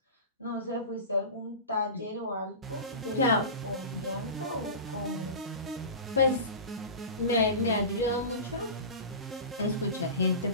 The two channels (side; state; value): both; inverted; correlation -0.30